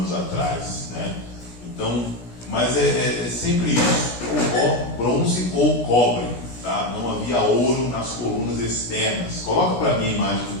atrás, né? Então, mas é sempre isso, ou bronze ou cobre, tá? Não havia ouro nas colunas externas. Coloca para mim a imagem do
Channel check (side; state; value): right; late; 17 ms